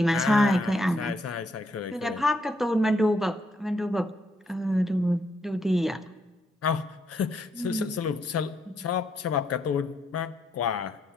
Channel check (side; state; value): both; normal; correlation 0.75